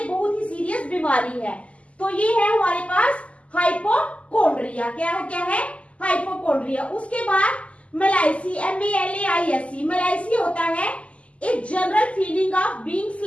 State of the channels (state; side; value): late; right; 0.062 ms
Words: बहुत ही सीरियस बीमारी है। तो ये है हमारे पास हाइपोकॉन्ड्रिया। क्या है? हाइपोकॉन्ड्रिया। उसके बाद मेलाइसी, MALAISE, मेलाइसी होता है एक general feeling of being